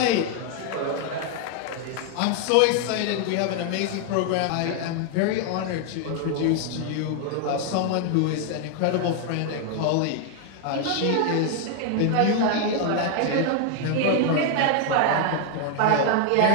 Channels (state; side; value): different; both; correlation 0.00